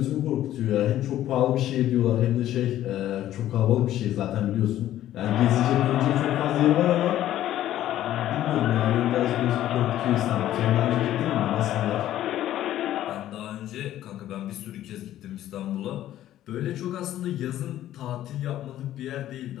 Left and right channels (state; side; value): quieter; right; 12.9 dB